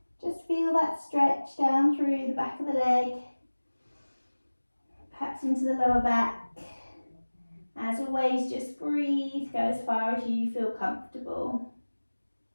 Just feel that stretch down through the back of the leg, perhaps into the lower back. As always, just breathe, go as far as you feel comfortable.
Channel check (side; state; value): both; inverted; correlation -1.00